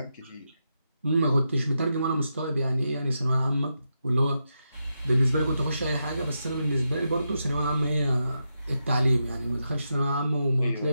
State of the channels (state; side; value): inverted; both; correlation -0.86